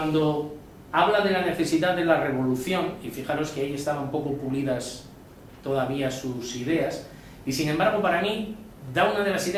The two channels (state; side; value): identical; both; correlation 1.00